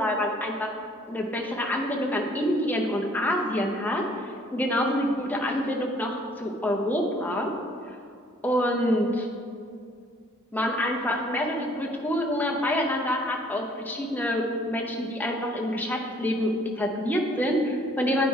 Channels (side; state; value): both; normal; correlation 0.59